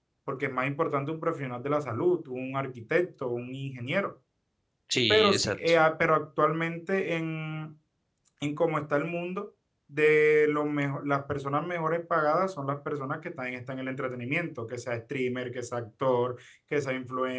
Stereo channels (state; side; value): identical; both; correlation 1.00